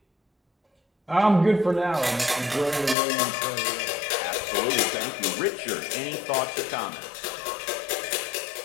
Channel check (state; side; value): drops out; right; at 3.0 s